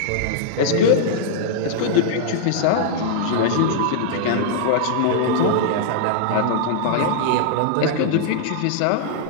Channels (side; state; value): both; different; correlation -0.01